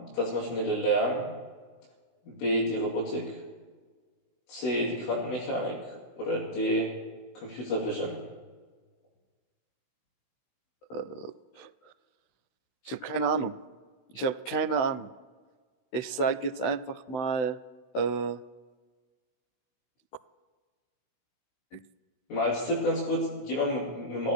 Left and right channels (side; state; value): right; late; 16 ms